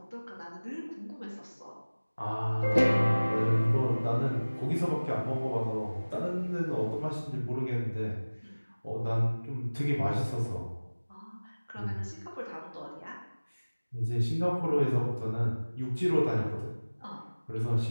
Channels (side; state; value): both; inverted; correlation -1.00